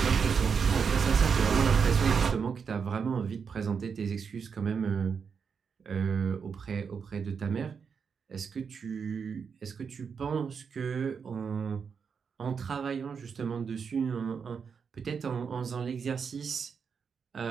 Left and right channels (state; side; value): quieter; left; 6.2 dB